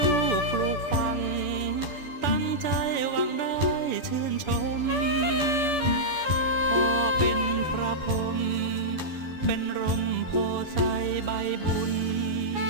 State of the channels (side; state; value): right; late; 7.0 ms